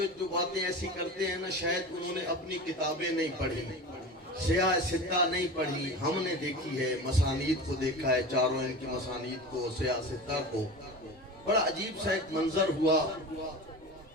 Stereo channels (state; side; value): normal; both; correlation 0.31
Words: جو باتیں ایسی کرتے ہیں نا، شاید انہوں نے اپنی کتابیں نہیں پڑھی، سیاہ ستہ نہیں پڑھی. ہم نے دیکھی ہے، مسانید کو دیکھا ہے، چاروں ان کی مسانید کو، سیاہ ستہ کو. بڑا عجیب سا ایک منظر ہوا.